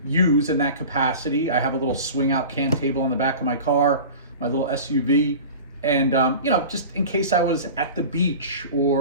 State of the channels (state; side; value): inverted; both; correlation -0.35